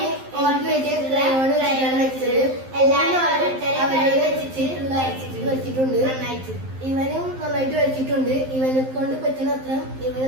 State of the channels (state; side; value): late; left; 11 ms